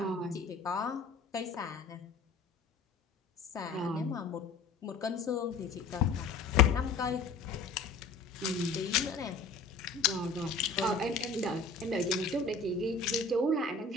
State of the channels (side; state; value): right; quieter; 4.2 dB